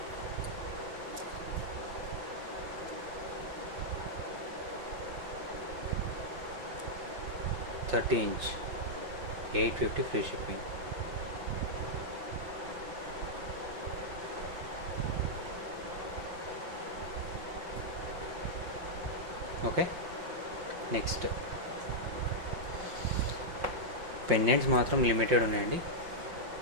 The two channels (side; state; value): left; late; 5.6 ms